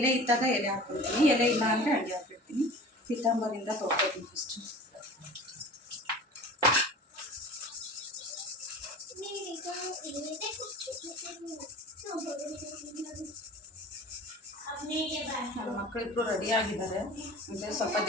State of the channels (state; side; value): normal; both; correlation 0.40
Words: ಇದ್ದಾಗ ಎಲೆ ಹಾಕ್ಬಿಡ್ತೀನಿ, ಎಲೆ ಇಲ್ಲ ಅಂದರೆ ಅಡುಗೆ ಹಾಕಿಡ್ತೀನಿ. ಪೀತಾಂಬರಿಂದ ತೊಳ್ಕೊತೀನಿ ಫಸ್ಟು. ನನ್ನ ಮಕ್ಕಳಿಬ್ರು ರೆಡಿ ಆಗಿದ್ದಾರೆ. ಅಂದರೆ ಸ್ವಲ್ಪ